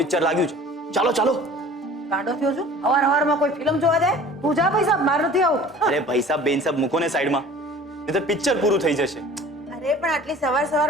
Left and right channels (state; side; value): normal; both; correlation 0.46